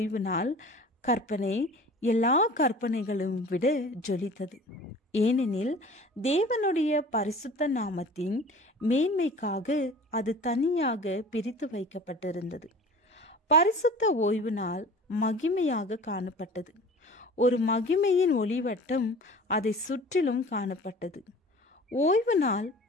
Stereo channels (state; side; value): normal; both; correlation 0.43